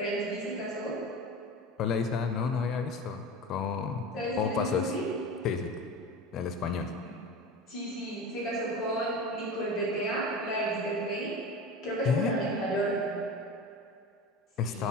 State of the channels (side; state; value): both; normal; correlation 0.30